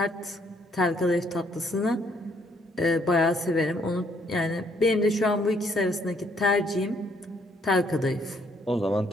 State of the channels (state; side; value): normal; both; correlation 0.68